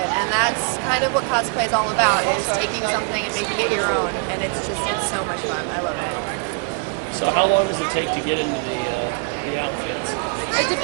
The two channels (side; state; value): left; quieter; 36.5 dB